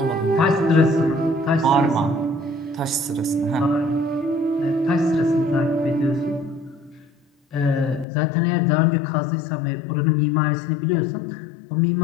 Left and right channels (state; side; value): drops out; right; at 8.1 s